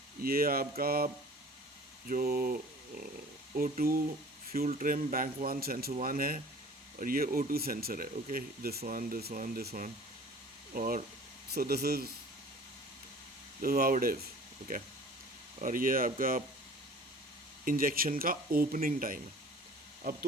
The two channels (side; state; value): both; normal; correlation 0.46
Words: ये आपका जो O2 fuel trim bank one sensor one है, और ये O2 सेंसर है। Okay, this one this one this one, और so this is how it is. Okay, और ये आपका इंजेक्शन का ओपनिंग टाइम है। अब